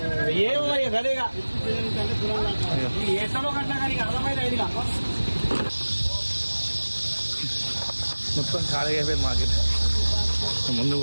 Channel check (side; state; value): both; inverted; correlation -1.00